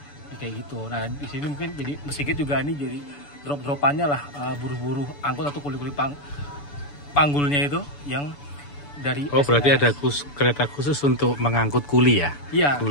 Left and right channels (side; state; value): right; late; 7.0 ms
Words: kayak gitu. Nah di sini mungkin jadi Mesigit juga ini jadi drop-dropannya lah buruh-buruh angkut atau kuli-kuli panggulnya itu yang dari berarti ada kereta khusus untuk mengangkut kuli ya? Iya,